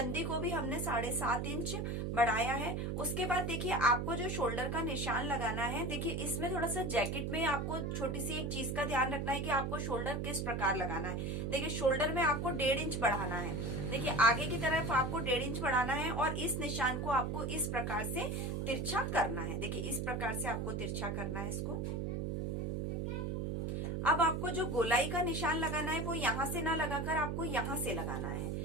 को भी हमने 7.5 इंच बढ़ाया है। उसके बाद देखिए, आपको जो शोल्डर का निशान लगाना है, देखिए इसमें थोड़ा सा जैकेट में आपको छोटी सी एक चीज का ध्यान रखना है कि आपको शोल्डर किस प्रकार लगाना है। देखिए, शोल्डर में आपको 1.5 इंच बढ़ाना है। देखिए, आगे की तरफ आपको 1.5 इंच बढ़ाना है और इस निशान को आपको इस प्रकार से तिरछा करना है। देखिए, इस प्रकार से आपको तिरछा करना है इसको। अब आपको जो गोलाई का निशान लगाना है वो यहाँ से ना लगाकर आपको यहाँ से लगाना है।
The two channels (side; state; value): right; noise; hum, 1 dB below the sound